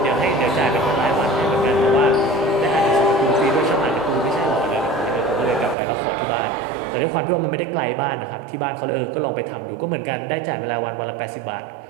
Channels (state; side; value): drops out; left; at 5.8 s